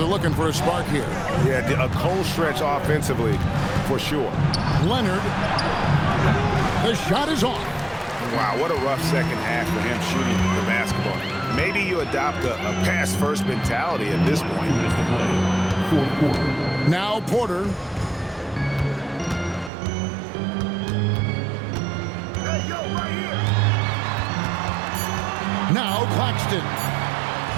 looking for a spark here. Yeah, a cold stretch offensively, for sure. Leonard. The shot is off. Wow, what a rough second half for him shooting the basketball. Maybe you adopt a pass-first mentality at this point. Now Porter. Hey, yo, right here. Now Claxton.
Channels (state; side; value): drops out; left; at 19.7 s